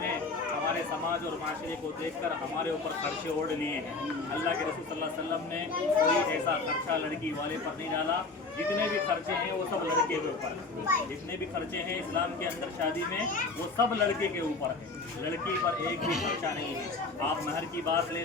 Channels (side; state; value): right; quieter; 3.8 dB